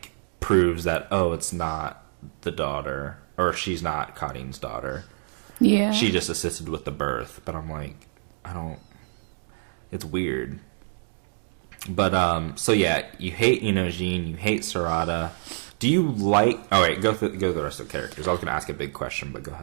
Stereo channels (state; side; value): silent; left; digital silence